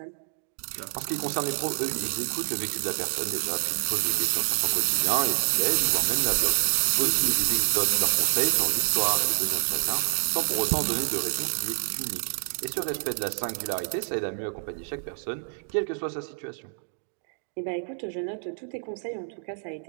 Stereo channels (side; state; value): left; silent; 60 dB below the other